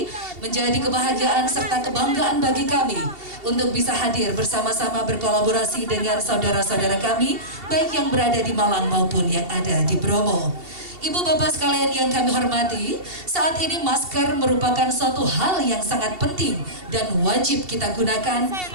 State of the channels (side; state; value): left; late; 2.7 ms